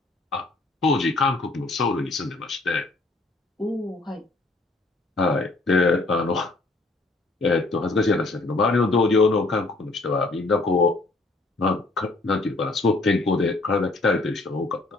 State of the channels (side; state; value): right; quieter; 3.3 dB